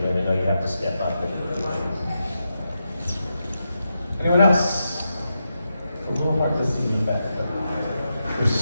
know you have to step up. Anyone else? A little more to see you back. There's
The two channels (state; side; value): inverted; both; correlation -0.87